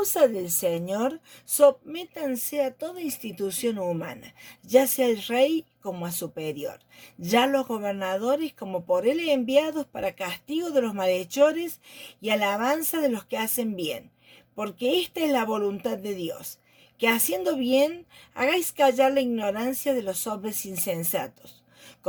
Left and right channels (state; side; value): identical; both; correlation 1.00